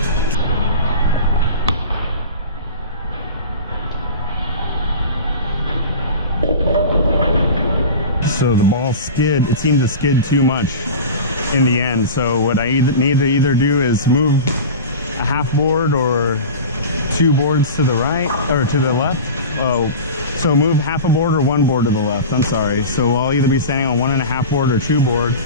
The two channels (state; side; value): inverted; both; correlation -0.32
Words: So the ball skid, it seemed to skid too much in the end. So what I need to either do is move a half board or 2 boards to the right or to the left. Oh, so move half a board or 1 board to the left. I'm sorry. So I'll either be standing on 1.5 board or 2 board.